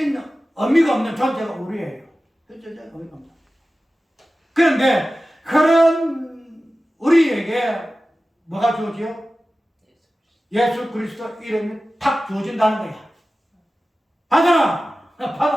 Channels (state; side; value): normal; both; correlation 0.95